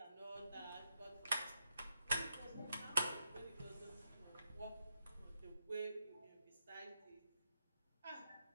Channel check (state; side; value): inverted; both; correlation -0.83